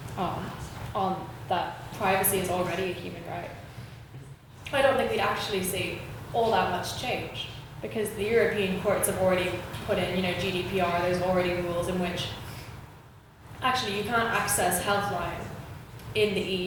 on that privacy is already a human right, I don't think we'd actually see all that much change because the European courts have already put in, GDPR, there's already rules in which actually you can't access Healthline in the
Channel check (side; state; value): both; identical; correlation 1.00